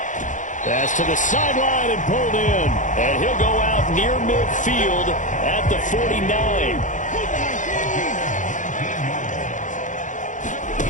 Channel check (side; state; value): right; late; 0.37 ms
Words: Pass to the sideline and pulled in. And he'll go out near midfield at the 49.